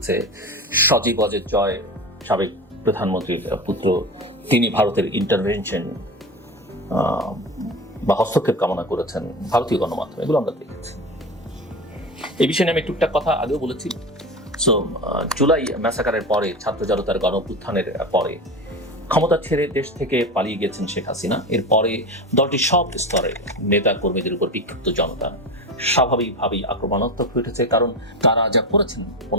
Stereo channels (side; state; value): both; normal; correlation 0.26